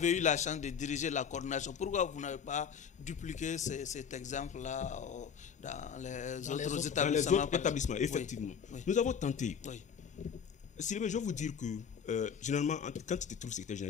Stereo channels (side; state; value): right; quieter; 7.1 dB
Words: eu la chance de diriger la coordination, pourquoi vous n'avez pas dupliqué cet exemple-là dans les autres établissements? Dans les autres établissements, effectivement. Oui. Nous avons tenté. Oui. Sylvain, je vais vous dire que, généralement, quand tu te trouves secrétaire